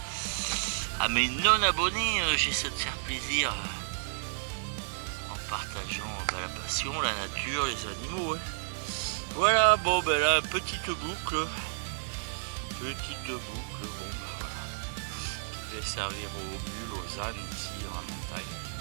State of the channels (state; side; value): silent; left; digital silence